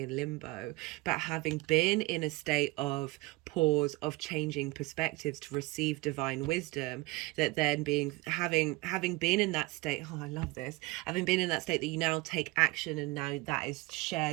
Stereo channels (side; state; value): left; quieter; 22.2 dB